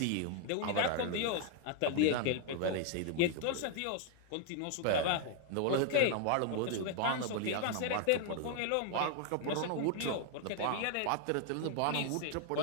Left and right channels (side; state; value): both; different; correlation 0.00